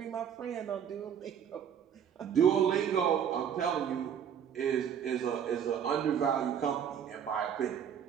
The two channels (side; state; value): left; quieter; 8.4 dB